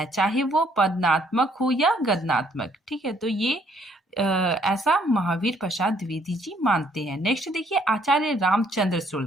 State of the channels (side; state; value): both; normal; correlation 0.66